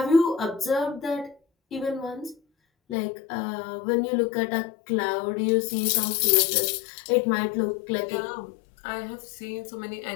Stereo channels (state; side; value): drops out; right; at 3.0 s